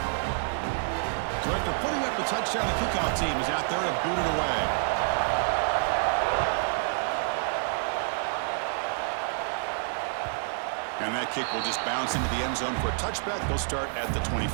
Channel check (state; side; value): silent; left; digital silence